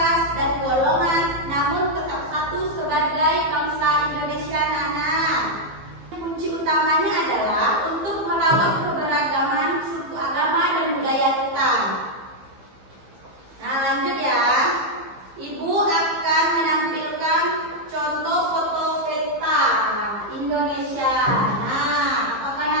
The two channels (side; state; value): left; late; 15 ms